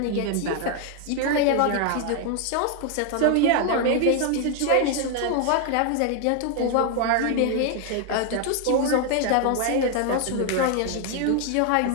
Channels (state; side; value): different; both; correlation 0.00